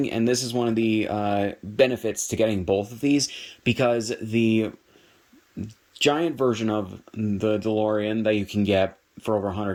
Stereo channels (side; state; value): both; identical; correlation 1.00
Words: And this is one of the benefits to getting both of these, because the giant version of the DeLorean that you can get for over